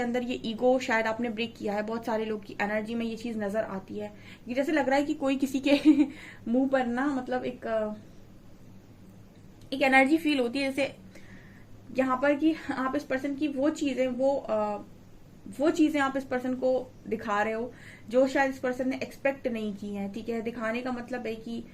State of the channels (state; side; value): identical; both; correlation 1.00